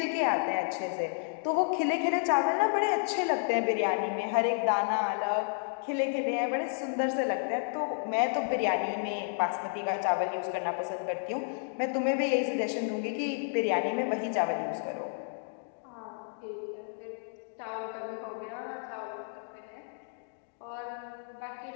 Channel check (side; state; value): right; silent; digital silence